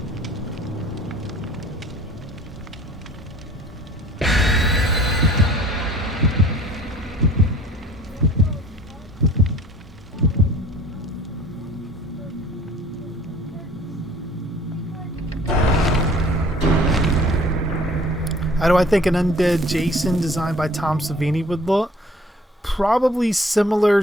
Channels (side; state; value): both; normal; correlation 0.51